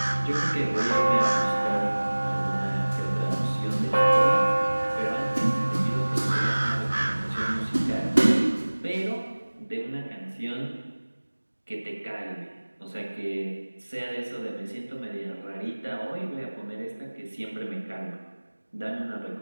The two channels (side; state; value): both; inverted; correlation -1.00